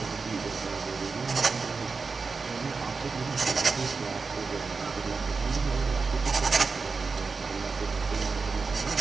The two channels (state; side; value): quieter; left; 4.6 dB